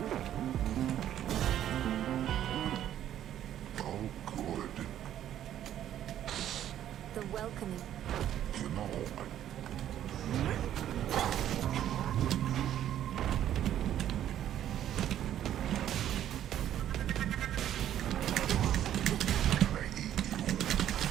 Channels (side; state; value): left; quieter; 11.2 dB